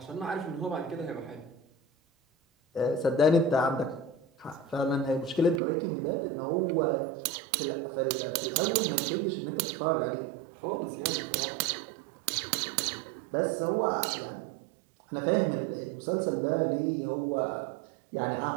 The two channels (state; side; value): drops out; left; at 5.6 s